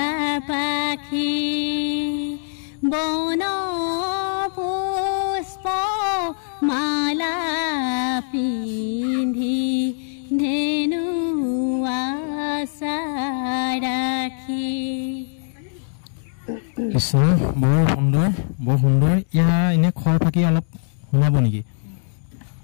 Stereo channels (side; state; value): right; silent; digital silence